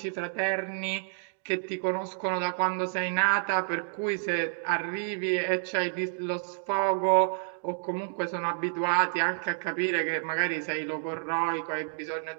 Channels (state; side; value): silent; left; digital silence